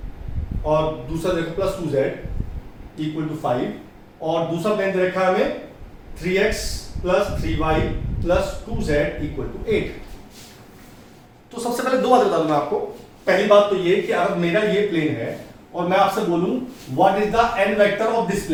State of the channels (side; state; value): both; identical; correlation 1.00